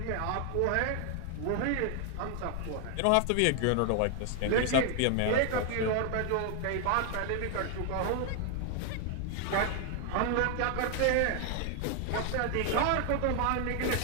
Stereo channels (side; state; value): both; different; correlation 0.00